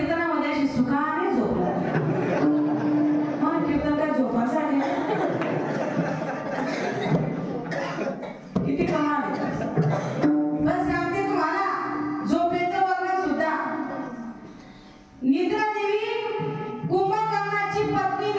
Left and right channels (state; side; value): identical; both; correlation 1.00